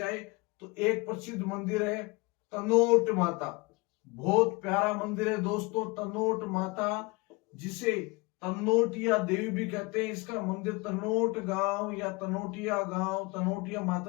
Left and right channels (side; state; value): right; quieter; 25.6 dB